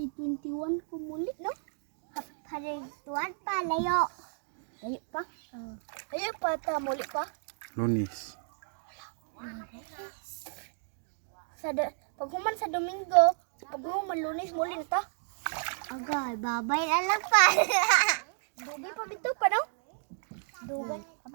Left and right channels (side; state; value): left; silent; digital silence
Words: ko muli, no? Hari tuan pa layo. Layo pa? Layo pa ta, muli pa? Lunis. Paghuman sa Domingo, paghuman Lunes, muli na ta. Agay, babay na lang pa. Dugay pa bito pa, no? Dugay.